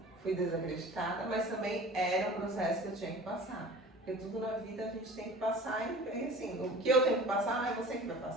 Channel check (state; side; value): normal; both; correlation 0.42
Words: fui desacreditada, mas também era um processo que eu tinha que passar. Porque tudo na vida a gente tem que passar e assim, o que eu tenho que passar não é você que vai